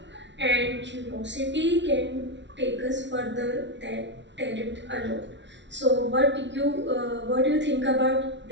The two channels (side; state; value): left; late; 0.52 ms